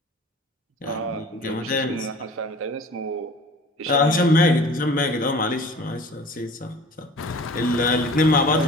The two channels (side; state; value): both; normal; correlation 0.44